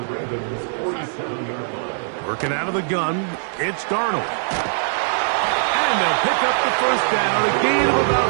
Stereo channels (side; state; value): left; silent; digital silence